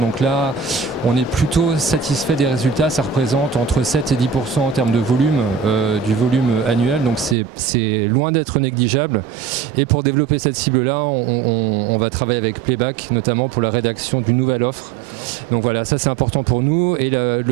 là, on est plutôt satisfait des résultats. Ça représente entre 7 et 10% en termes de volume, du volume annuel. Donc c'est loin d'être négligeable. Et pour développer cette cible-là, on va travailler avec Playback, notamment pour la rédaction d'une nouvelle offre. D'accord. Donc voilà, ça c'est important pour nous. Et la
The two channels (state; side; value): drops out; left; at 7.4 s